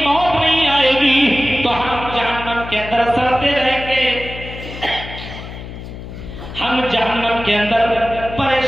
موت نہیں آئے گی تو ہم جہنم کے اندر سڑتے رہیں گے، ہم جہنم کے اندر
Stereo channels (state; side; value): noise; left; hum, 11 dB below the sound